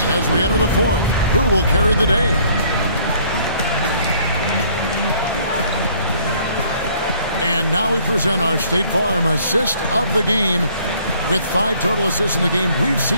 as we enter the 4th. Who will carry the day? And now we present our State Farm assist of the game. With 5 total assists in the game, we've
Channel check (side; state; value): both; inverted; correlation -0.60